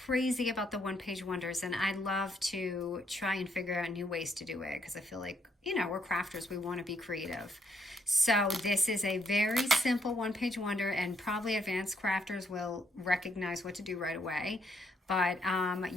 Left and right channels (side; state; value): both; normal; correlation 0.74